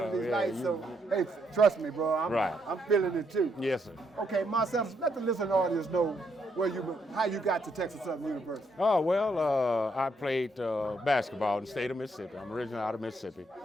under these Yeah, lights. you- So, hey, trust me, bro. I'm feeling it too. Yes, sir. Okay, Marcellus, let the listening audience know how you got to Texas Southern University. Oh, well, I played basketball in the state of Mississippi. I'm originally out of Mississippi.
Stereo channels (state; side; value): normal; both; correlation 0.75